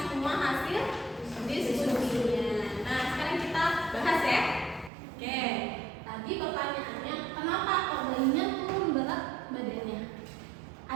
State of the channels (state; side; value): drops out; left; at 4.9 s